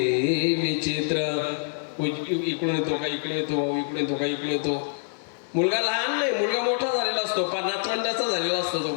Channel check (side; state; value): right; silent; digital silence